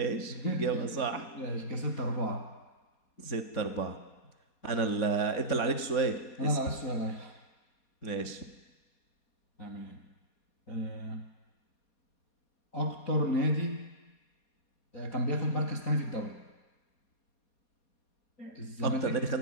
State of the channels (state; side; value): late; right; 4.2 ms